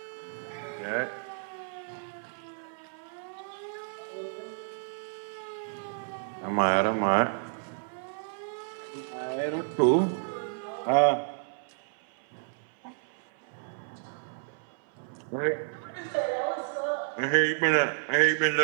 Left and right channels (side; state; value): left; silent; 57 dB below the other